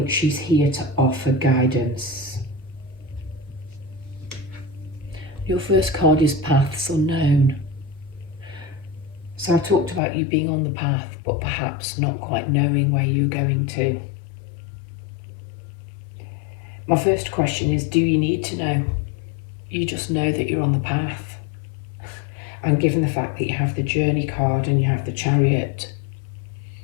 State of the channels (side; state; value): right; drops out; at 10.0 s